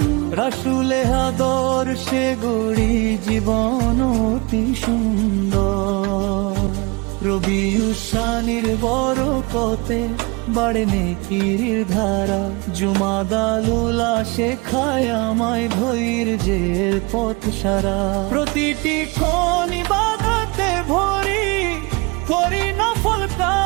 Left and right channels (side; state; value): left; quieter; 27.4 dB